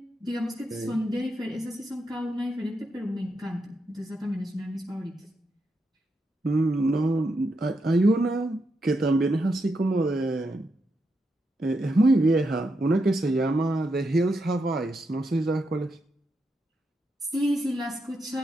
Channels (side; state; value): both; normal; correlation 0.83